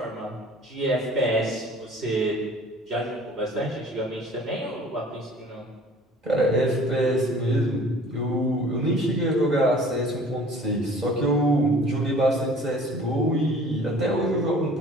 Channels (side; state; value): both; normal; correlation 0.49